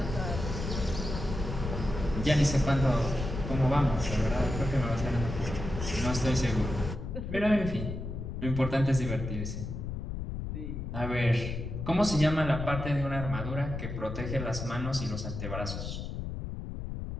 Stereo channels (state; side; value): noise; left; rumble, 5 dB below the sound